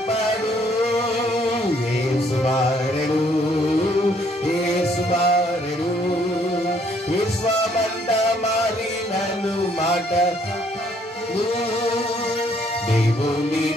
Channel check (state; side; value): normal; both; correlation 0.66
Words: యేసు మారెడు, యేసు మారెడు, విశ్వమంత మారినను మాట. దేవుని